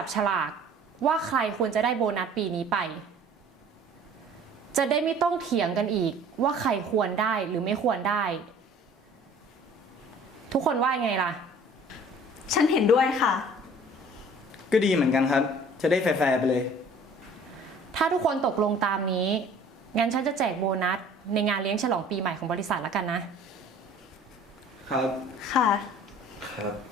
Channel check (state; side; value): normal; both; correlation 0.50